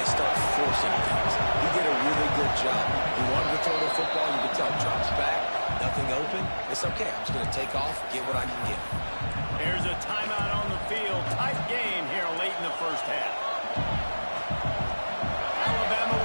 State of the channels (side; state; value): both; inverted; correlation -1.00